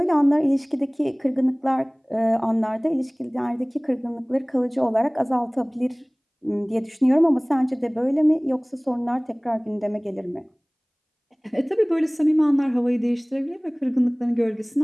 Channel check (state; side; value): identical; both; correlation 1.00